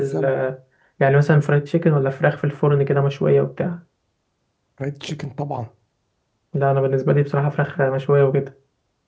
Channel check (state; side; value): identical; both; correlation 1.00